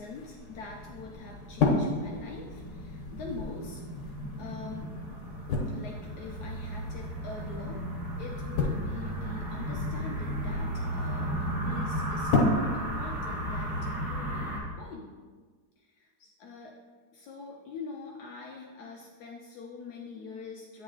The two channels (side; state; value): right; late; 4.8 ms